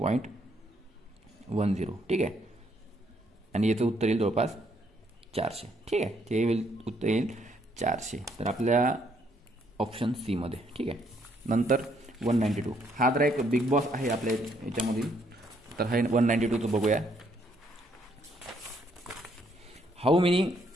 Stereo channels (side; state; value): both; normal; correlation 0.70